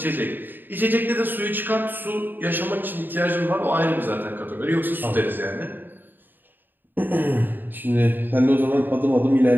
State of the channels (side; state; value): left; late; 0.092 ms